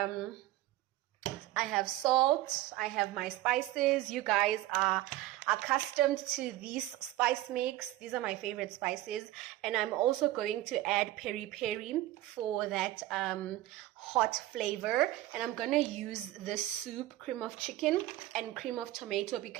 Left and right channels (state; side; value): quieter; left; 15.7 dB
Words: I have salt, I have my spices. You guys are accustomed to these spice mix. These are my favorite spices. And I'm also going to add peri peri for that hot flavor. And I'm going to use this soup, cream of chicken and cream of tomato,